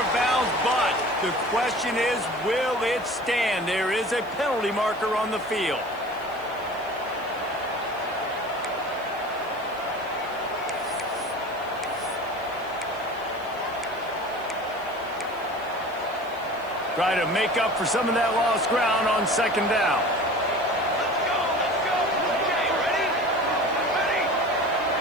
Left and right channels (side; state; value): right; noise; hiss, 25 dB below the sound